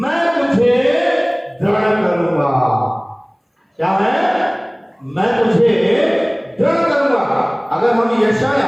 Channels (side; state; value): both; identical; correlation 1.00